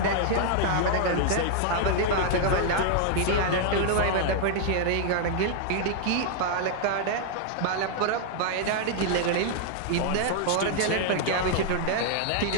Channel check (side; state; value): both; different; correlation 0.00